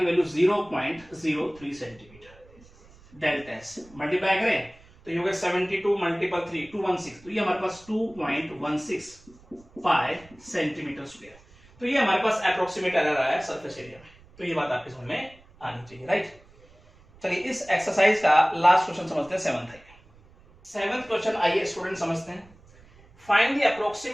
value 0.03 centimetre. Delta S multiply करें तो ये हो गया 72 मल्टीपल 3 216। तो ये हमारे पास 2.16 पाई सेंटीमीटर स्क्वायर। तो ये हमारे पास अप्रोक्सीमेट एरर आया सरफेस एरिया में। तो ये बात आपके समझ में आनी चाहिए, राइट। चलिए इस एक्सरसाइज का लास्ट क्वेश्चन समझते हैं 7th है। 7th क्वेश्चन आइए स्टूडेंट समझते हैं। Find the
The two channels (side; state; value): right; noise; rumble, 26 dB below the sound